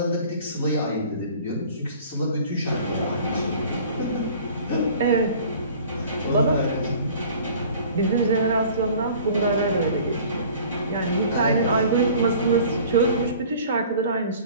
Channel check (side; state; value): both; inverted; correlation -0.48